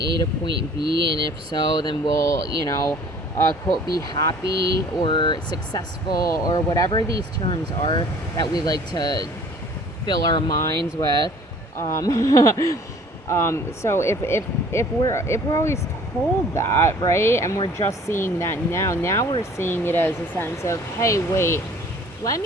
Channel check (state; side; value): normal; both; correlation 0.51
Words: to point B, and if so, then we'll, quote, be happy or successful, or whatever these terms are that we like to fill our minds with. So if we're always told that, right, and we're just seeing that now we're seeing it as a sense of, hey, wait, let